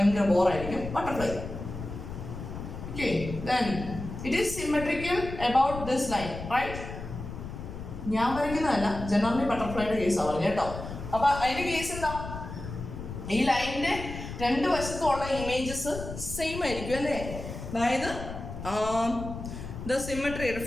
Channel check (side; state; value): left; noise; rumble, 9 dB below the sound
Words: ബോറായിരിക്കും butterfly. Okay, then it is symmetrical about this line, right? ഞാൻ വരയ്ക്കുന്നതല്ല, ജനറലി ബട്ടർഫ്ലൈയുടെ കേസാണ് പറഞ്ഞു കേട്ടോ. അപ്പൊ അതിന്റെ കേസ് എന്താ? ഈ ലൈനിന്റെ 2 വശത്തുള്ള ഇമേജസ് സെയിം ആയിരിക്കും അല്ലേ. അതായത് the symmetry,